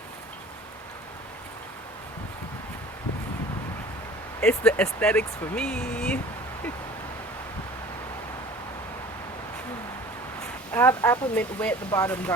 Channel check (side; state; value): both; normal; correlation 0.45